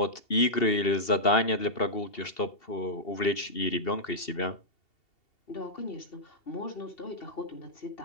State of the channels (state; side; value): late; right; 2.7 ms